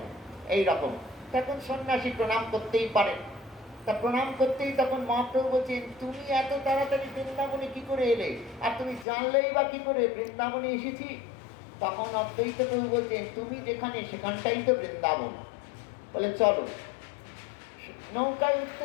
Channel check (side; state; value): right; drops out; at 9.1 s